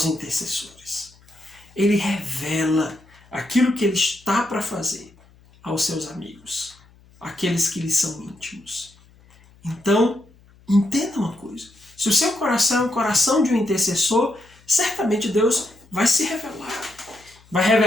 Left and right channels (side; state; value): left; noise; hum, 28 dB below the sound